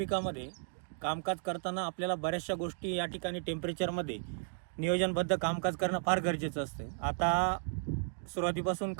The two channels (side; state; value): left; silent; digital silence